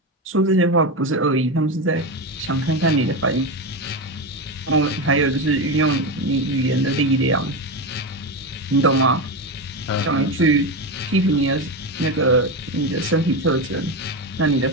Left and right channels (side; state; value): both; normal; correlation 0.16